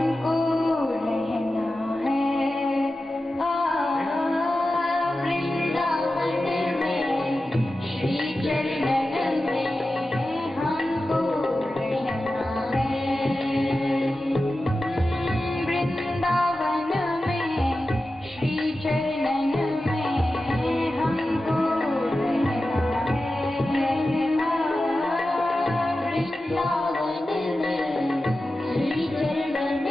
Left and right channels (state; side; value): normal; both; correlation 0.93